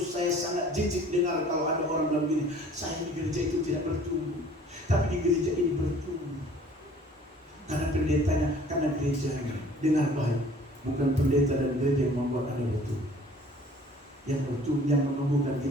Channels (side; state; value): both; normal; correlation 0.51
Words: sangat jijik dengar kalau ada orang bilang begini, saya di gereja itu tidak bertumbuh, tapi di gereja ini bertumbuh. Karena pendetanya, karena gerejanya. Dengar baik, bukan pendeta dan gereja yang membuat Anda bertumbuh. Yang bertumbuh, yang menumbuhkan